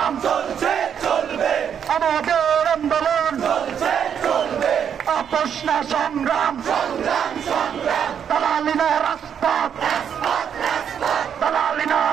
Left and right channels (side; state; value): left; quieter; 8.2 dB